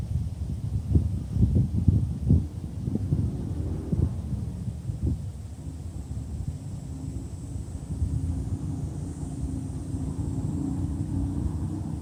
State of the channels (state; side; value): identical; both; correlation 1.00